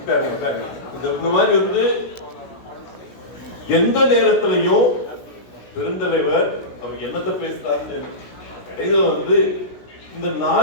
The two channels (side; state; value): right; late; 16 ms